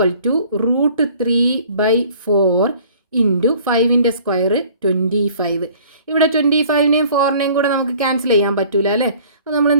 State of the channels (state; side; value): inverted; both; correlation -0.52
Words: to √3/4 into 5ൻ്റെ സ്ക്വയർ 25. ഇവിടെ 25നെയും 4നെയും കൂടെ നമുക്ക് ക്യാൻസൽ ചെയ്യാൻ പറ്റൂല അല്ലേ. അപ്പോൾ നമ്മൾ